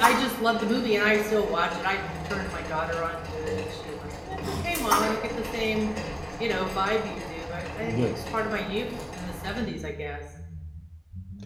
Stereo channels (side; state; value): both; identical; correlation 1.00